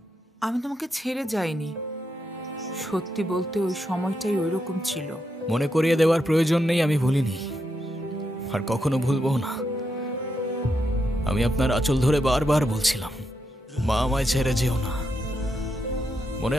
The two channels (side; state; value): both; normal; correlation 0.83